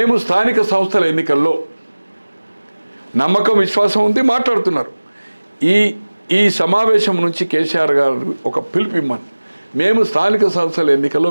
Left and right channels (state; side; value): inverted; both; correlation -1.00